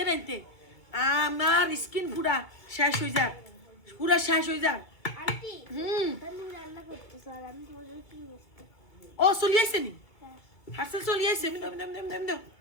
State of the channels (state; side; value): late; right; 2.3 ms